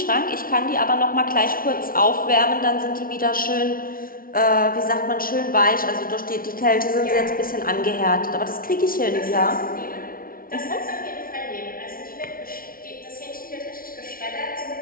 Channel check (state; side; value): late; right; 0.42 ms